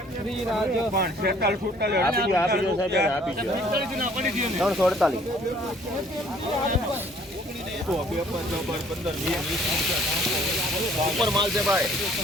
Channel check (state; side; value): normal; both; correlation 0.58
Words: ઉપર માલ છે ભાઈ